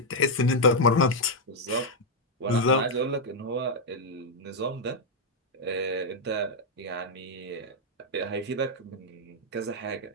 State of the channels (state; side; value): normal; both; correlation -0.01